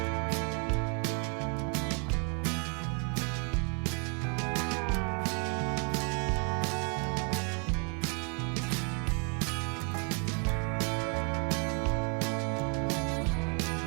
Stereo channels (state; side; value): quieter; left; 37.1 dB